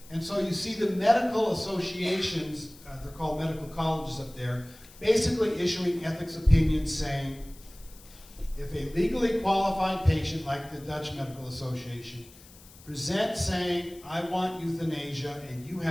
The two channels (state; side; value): noise; left; hiss, 22 dB below the sound